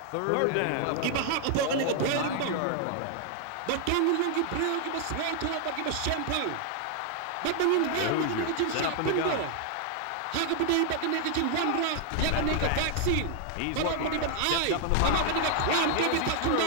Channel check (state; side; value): different; both; correlation 0.00